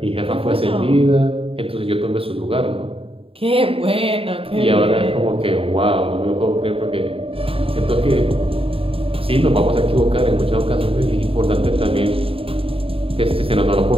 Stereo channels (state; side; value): late; left; 0.27 ms